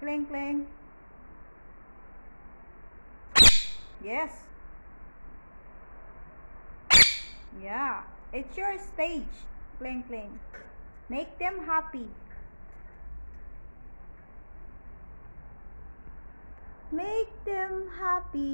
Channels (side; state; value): both; inverted; correlation -1.00